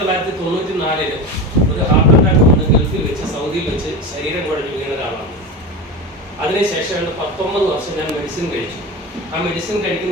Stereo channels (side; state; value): both; normal; correlation 0.25